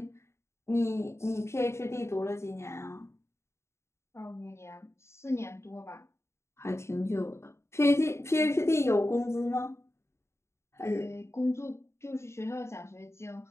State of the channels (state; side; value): late; right; 0.13 ms